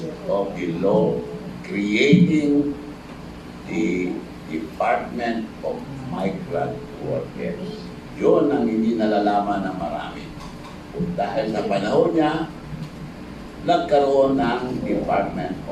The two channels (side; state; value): both; identical; correlation 1.00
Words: of the law creating the Department of Migrant Workers. Yun ang hindi nalalaman ng marami. Dahil sa panahon niya, nagkaroon ng Department